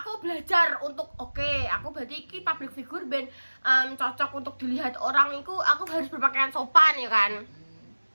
belajar untuk aku berarti iki public figure ben cocok untuk dilihat orang iku aku harus berpakaian sopan ya kan.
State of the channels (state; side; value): inverted; both; correlation -1.00